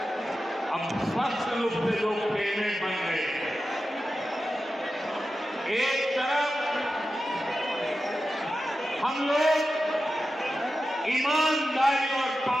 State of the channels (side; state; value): both; normal; correlation 0.92